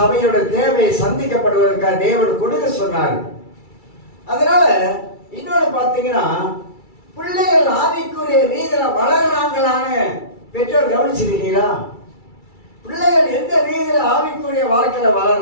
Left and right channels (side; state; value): right; late; 2.3 ms